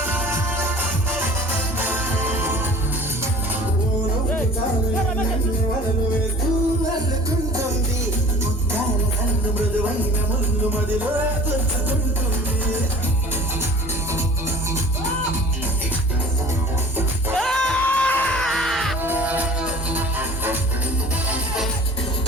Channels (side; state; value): both; normal; correlation 0.46